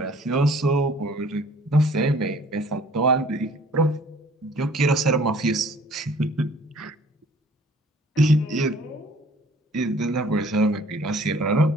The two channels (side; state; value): both; normal; correlation 0.54